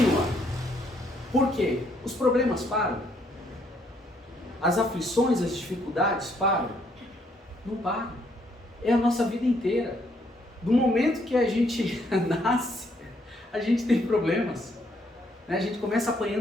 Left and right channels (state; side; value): normal; both; correlation 0.70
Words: Por quê? Os problemas param. As aflições, as dificuldades param? Não param. É a nossa vida inteira. Do momento que a gente nasce, a gente tem problemas. A gente começa